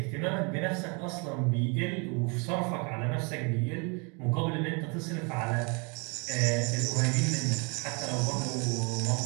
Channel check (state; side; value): quieter; left; 32.8 dB